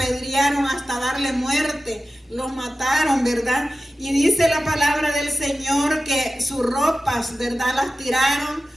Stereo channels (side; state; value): both; normal; correlation 0.95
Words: hasta darle muerte, lo mataron, ¿verdad? Y dice la palabra del Señor que sus ropas, ¿verdad?, las tiraron